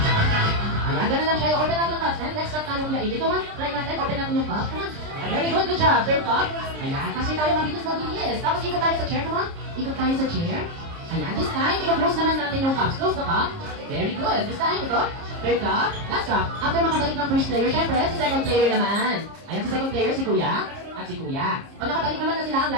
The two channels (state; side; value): late; left; 30 ms